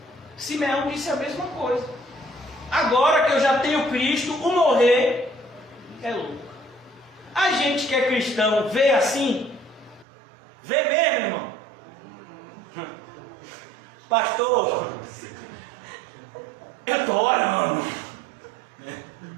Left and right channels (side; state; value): left; drops out; at 10.1 s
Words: Simeão disse a mesma coisa. Agora que eu já tenho Cristo, o morrer é lucro. A gente que é cristão vê assim? Vê mesmo, irmão? Pastor, eu estou orando.